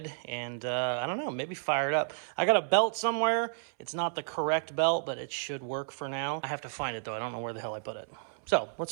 and I don't know, maybe fire it up. I got a belt somewhere. It's not the correct belt, but it should work for now. I have to find it though. I don't know where the hell I put it. So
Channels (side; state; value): left; silent; 57 dB below the other